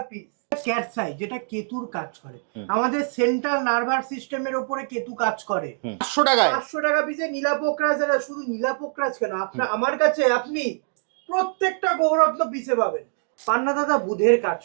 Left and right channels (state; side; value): silent; left; 63 dB below the other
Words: পিস। ক্যাটসাই যেটা কেতুর কাজ করে, আমাদের সেন্ট্রাল নার্ভাস সিস্টেমের ওপরে কেতু কাজ করে। 500 টাকায়? 500 টাকা পিসে নীলাপোকরাজ। যারা শুধু নীলাপোকরাজ কেন, আপনার আমার কাছে আপনি প্রত্যেকটা গৌরত্ন পিসে পাবেন। পান্না দাদা বুধের কাজ